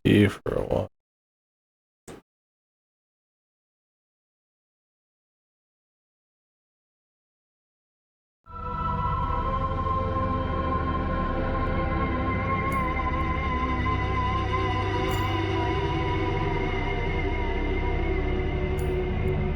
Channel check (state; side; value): identical; both; correlation 1.00